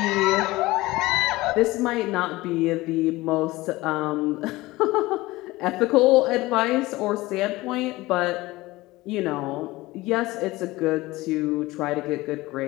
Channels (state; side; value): quieter; right; 19.6 dB